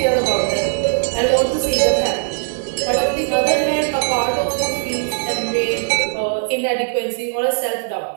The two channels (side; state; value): left; silent; digital silence